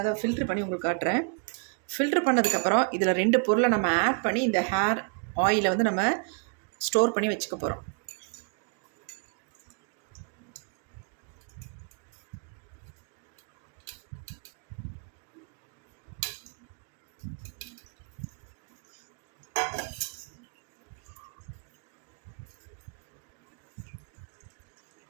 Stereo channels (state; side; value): quieter; left; 38.8 dB